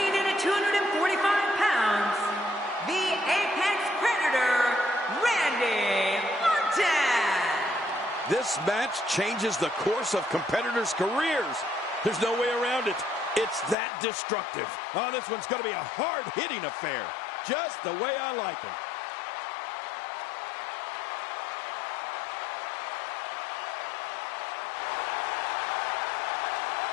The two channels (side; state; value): right; drops out; at 13.8 s